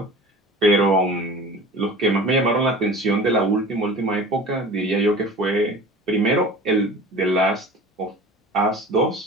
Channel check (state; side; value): normal; both; correlation 0.39